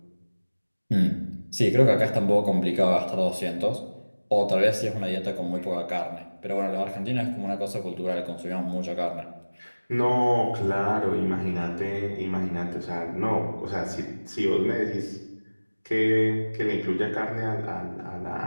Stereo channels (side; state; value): both; inverted; correlation -1.00